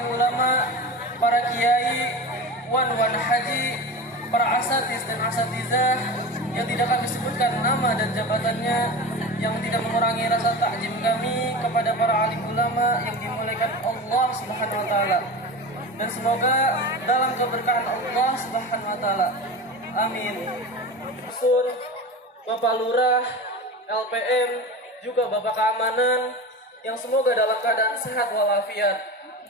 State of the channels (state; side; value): normal; both; correlation 0.29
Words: ulama, para kiai, wan haji, para asatiz dan asatizah yang tidak kami sebutkan nama dan jabatannya, yang tidak mengurangi rasa takjim kami kepada para alim ulama yang dimuliakan Allah Subhanahu wa taala. Dan semoga dalam keberkahan Allah Subhanahu wa taala. Amin. Sur, Bapak Lurah, LPM, juga Bapak Keamanan yang semoga dalam keadaan sehat walafiat.